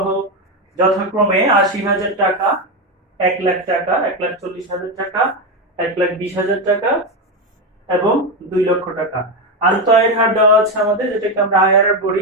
যথাক্রমে 80,000 টাকা, 1 লাখ টাকা, 1,40,000 টাকা, 1,20,000 টাকা এবং 2 লক্ষ টাকা। আন্তঃআয়ের হার দেওয়া আছে আমাদের, যেটাকে আমরা আইআরআর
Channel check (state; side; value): normal; both; correlation 0.11